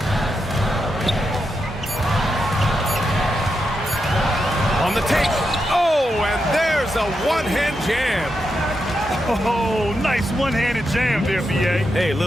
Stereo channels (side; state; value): both; normal; correlation 0.86